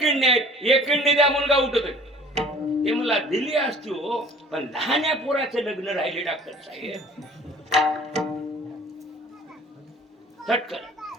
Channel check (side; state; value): both; normal; correlation 0.49